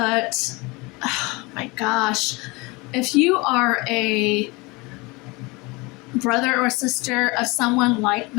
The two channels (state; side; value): quieter; right; 25.2 dB